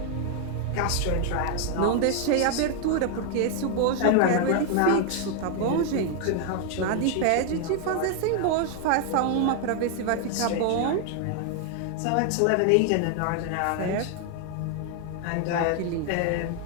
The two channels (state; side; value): different; both; correlation 0.00